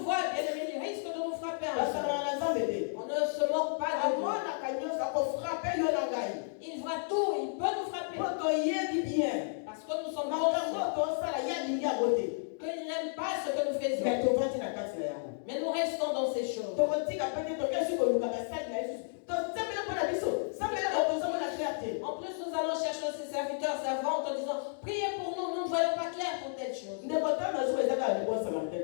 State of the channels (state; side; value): silent; right; digital silence